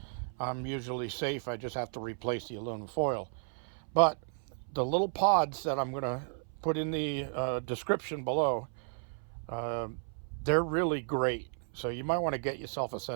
I'm usually safe. I just have to replace the aluminum foil. But the little pods that I'm going to put in the description below, they're really great. So you might want to get yourself a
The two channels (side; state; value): left; silent; 56 dB below the other